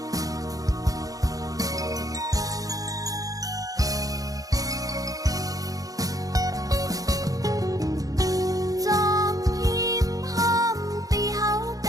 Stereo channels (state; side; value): late; left; 0.17 ms